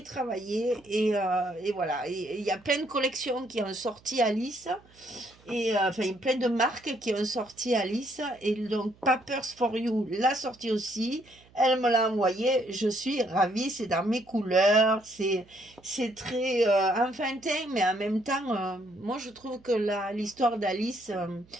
travaillé et voilà. Et il y a plein de collections qui ont sorti Alice et enfin plein de marques qui ont sorti Alice et donc Papers for You l'a sorti aussi. Elle me l'a envoyé, je suis ravie, c'est dans mes couleurs, c'est très enfantin, mais en même temps, moi je trouve que l'histoire d'Alice,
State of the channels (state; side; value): noise; right; hum, 28 dB below the sound